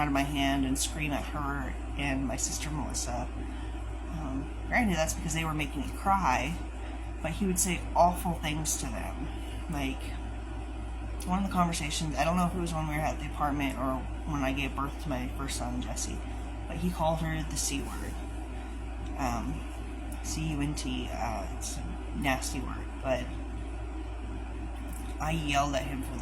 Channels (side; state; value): both; identical; correlation 1.00